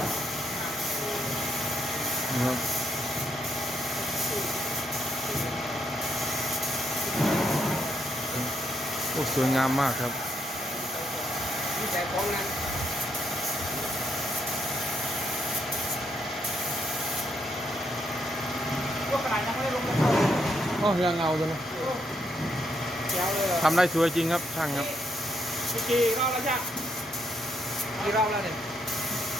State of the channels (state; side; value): normal; both; correlation 0.76